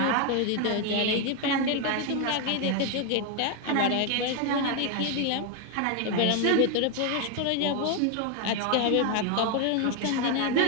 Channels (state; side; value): different; both; correlation 0.01